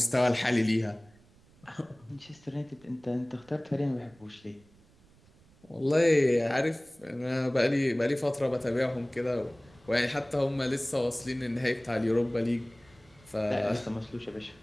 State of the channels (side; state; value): right; noise; rumble, 28 dB below the sound